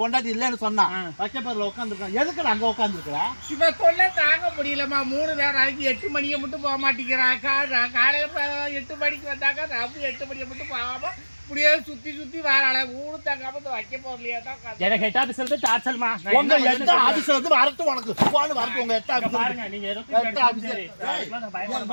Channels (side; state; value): both; inverted; correlation -1.00